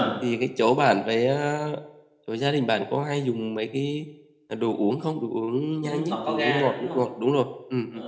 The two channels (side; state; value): both; identical; correlation 1.00